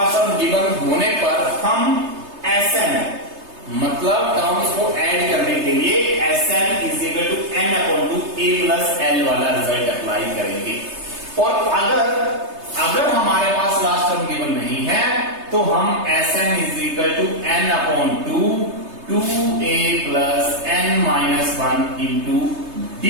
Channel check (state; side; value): late; left; 3.3 ms